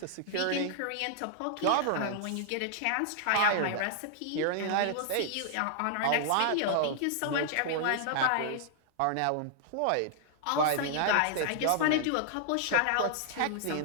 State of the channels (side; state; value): both; different; correlation -0.01